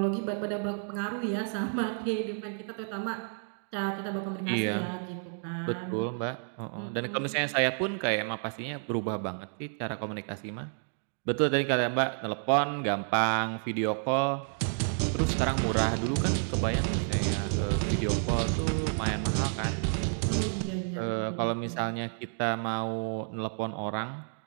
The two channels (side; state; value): left; silent; 58 dB below the other